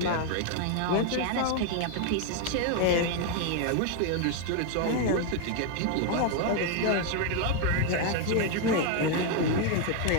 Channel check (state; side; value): different; both; correlation 0.01